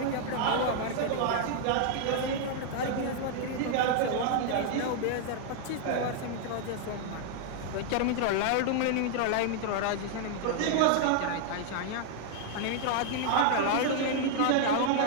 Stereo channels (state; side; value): different; both; correlation 0.00